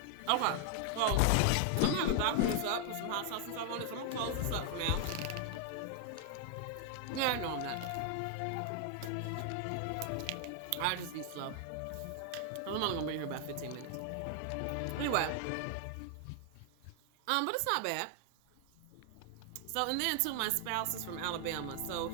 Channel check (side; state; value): both; different; correlation 0.00